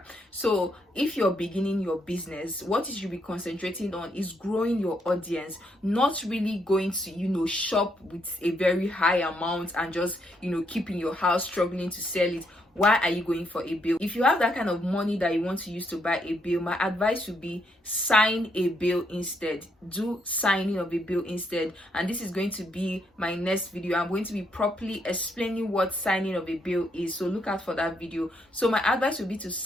So if you're beginning your business, what you should be concentrating on is growing your audience, not really going to shop with a very high amount and just keeping your house struggling to sell it. Why are you going for a bill? If you have that kind of money that you want to use to buy a bill, my advice would be sign a bill instead. Do signing of a bill instead. And this is going to be my next video. I'm going to be properly explaining what signing of a bill is, so look out for that video. So my advice would be to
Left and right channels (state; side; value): normal; both; correlation 0.76